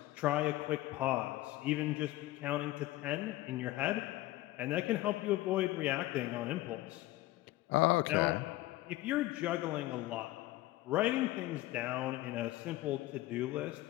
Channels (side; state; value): right; quieter; 17.2 dB